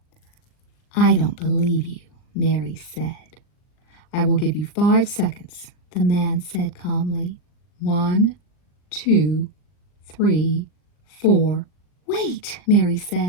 "I don't believe you," Mary said. "I will give you 5 seconds," the man said calmly. 1, 2, 3, 4. "Wait," Mary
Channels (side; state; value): right; late; 40 ms